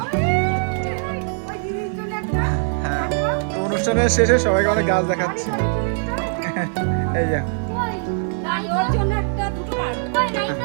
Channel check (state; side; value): silent; left; 61 dB below the other